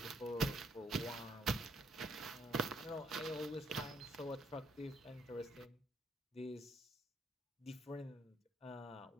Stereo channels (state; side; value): normal; both; correlation 0.71